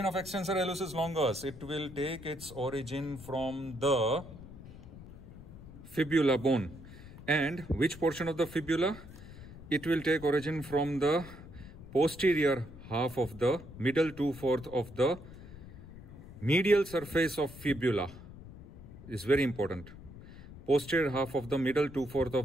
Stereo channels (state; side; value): noise; left; rumble, 16 dB below the sound